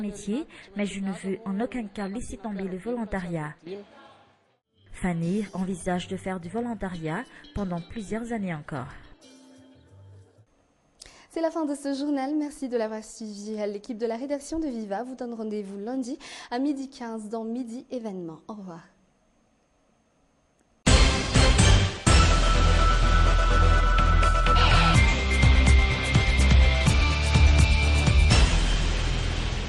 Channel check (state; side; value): identical; both; correlation 1.00